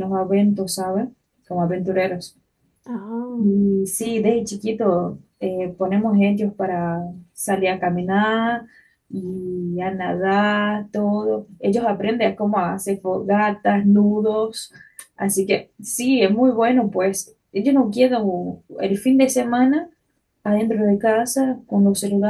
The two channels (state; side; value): identical; both; correlation 1.00